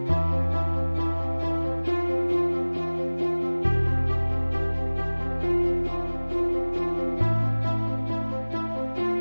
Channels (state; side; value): inverted; both; correlation -1.00